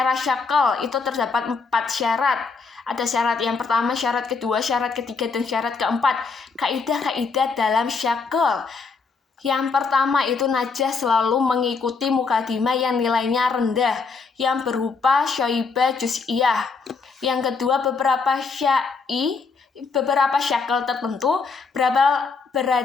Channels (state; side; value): quieter; right; 4.7 dB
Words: syakl itu terdapat 4 syarat. Ada syarat yang pertama, syarat kedua, syarat ketiga, dan syarat keempat. Kaidah-kaidah dalam syakl. Yang pertama itu najah selalu mengikuti mukadimah yang nilainya rendah, yang berupa syoibah juz'iyah. Yang kedua, beberapa syakl tertentu